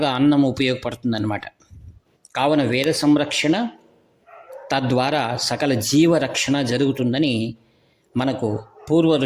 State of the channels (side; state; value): both; identical; correlation 1.00